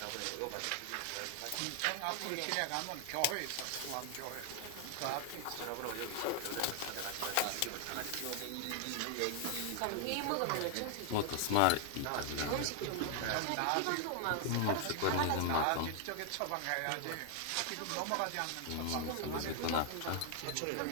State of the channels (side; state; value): both; different; correlation 0.00